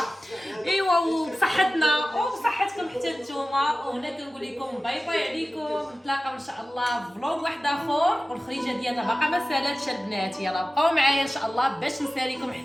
ايوا وبصحتنا وبصحتكم حتى نتوما. وهنا كنقول لكم باي باي عليكم، نتلاقاو ان شاء الله في فلوغ واحد اخر. والخريجه ديالنا باقا ما سالاتش البنات، يلا بقاو معايا ان شاء الله باش نساليكم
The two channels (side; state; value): both; normal; correlation 0.95